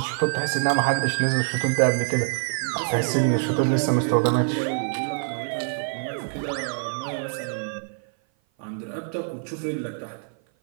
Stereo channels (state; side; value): silent; left; 56 dB below the other